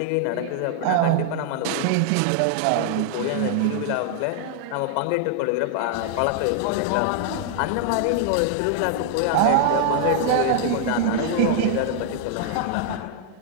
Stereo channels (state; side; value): different; both; correlation -0.01